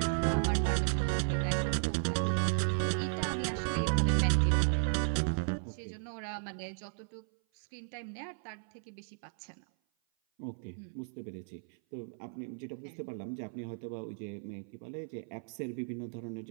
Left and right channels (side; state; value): left; silent; 55 dB below the other